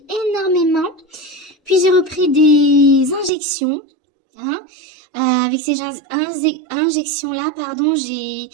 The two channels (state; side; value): drops out; left; at 3.3 s